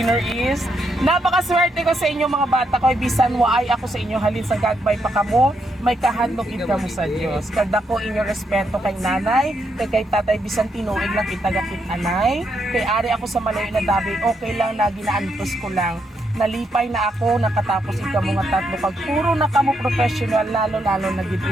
is, napakaswerte ko sa inyo mga bata ko, bisan waay ako sa inyo halin sa gagmay pa kamo, may kahandog ka mo sa Dios. Kada ko inyo respeto kay nanay, kay tatay bisan tinuig lang kitagakit anay, kay ari ako sa malayo na dabi, okay lang na ginaantos ko lang. Nalipay na ako, nakatapos ikaw mga tatlo. Pag puro na kamo professional, lalo na gid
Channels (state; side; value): normal; both; correlation 0.78